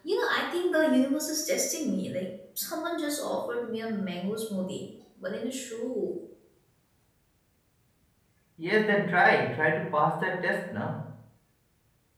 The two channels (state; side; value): identical; both; correlation 1.00